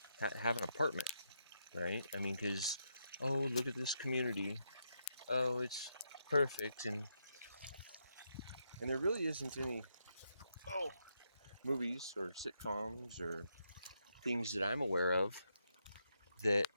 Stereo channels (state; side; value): inverted; both; correlation -0.80